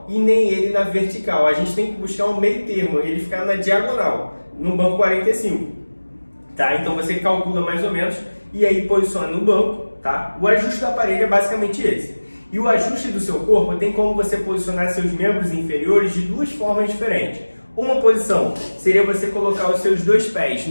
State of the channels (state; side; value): inverted; both; correlation -1.00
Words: e nem ele na vertical. A gente tem que buscar um meio termo, ele ficar na diagonal, no banco 45. Tá? Então você calcula mais ou menos e aí posiciona no banco. Tá? O ajuste do aparelho é basicamente esse. E o ajuste do seu corpo tem como você posicionar seus membros inferiores de duas formas diferentes. Uma posição seria você colocar os seus dois pés